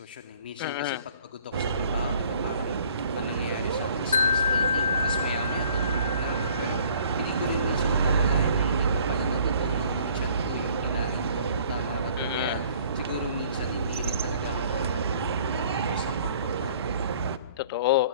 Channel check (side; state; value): both; inverted; correlation -0.55